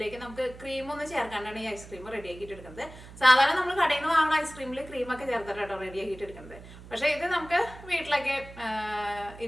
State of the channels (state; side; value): noise; right; hum, 17 dB below the sound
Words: നമുക്ക് ക്രീമൊന്നും ചേർക്കാണ്ടാണ് ഈ ഐസ്ക്രീം റെഡിയാക്കിയിട്ട് എടുക്കുന്നത്. സാധാരണ നമ്മൾ കടയിൽ നിന്ന് വാങ്ങുന്ന ഐസ്ക്രീമിൽ ക്രീമൊക്കെ ചേർത്തിട്ടാട്ടോ റെഡിയാക്കിയിട്ട് എടുക്കുന്നത്. പക്ഷെ ഇത് നമുക്ക് വീട്ടിലൊക്കെ